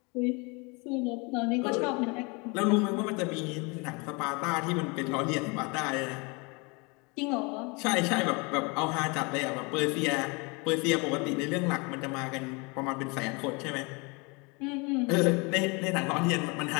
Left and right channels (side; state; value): right; quieter; 29.1 dB